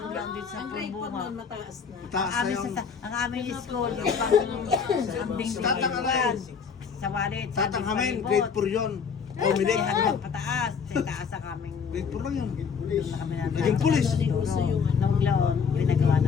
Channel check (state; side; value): quieter; right; 6.2 dB